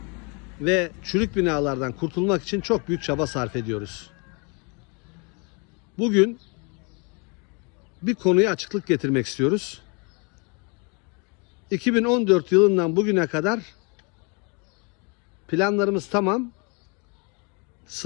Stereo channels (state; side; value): quieter; right; 32.7 dB